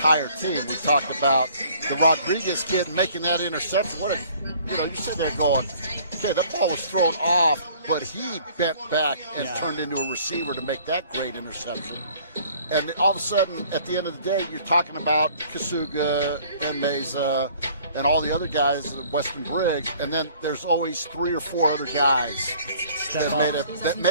team. We talked about the Rodriguez kid making that interception. You sit there going, okay, that ball was thrown off, but he bent back and turned into a receiver to make that great interception. And all of a sudden, at the end of the day, you're talking about Kasuga and Meza and all the other guys, Weston Briggs, and then there's always 3 or 4 other guys that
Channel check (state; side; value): inverted; both; correlation -0.55